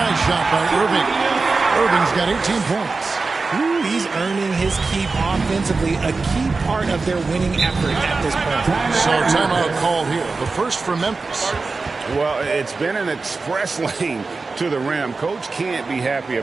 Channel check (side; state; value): left; quieter; 4.0 dB